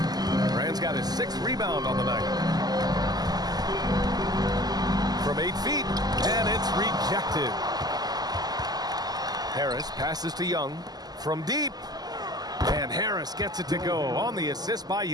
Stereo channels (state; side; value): late; left; 0.19 ms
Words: Rand's got his 6th rebound on the night. From 8 feet, and it's rejected. Harris passes to Young from deep. And Harris gets it to go on the assist by